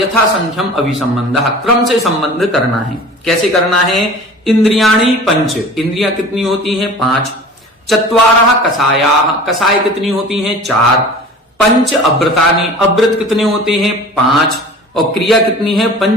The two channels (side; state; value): both; normal; correlation 0.41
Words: संख्यम अभिसंबंध, क्रम से संबंध करना है। कैसे करना है? इंद्रियाणि पंच, इंद्रियां कितनी होती हैं? 5। चत्वारः कषायाः, कषाय कितनी होती हैं? 4। पंच अव्रतानि, अव्रत कितने होते हैं? 5। और क्रिया कितनी है?